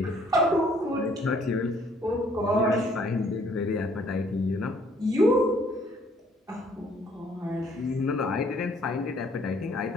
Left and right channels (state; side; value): normal; both; correlation 0.62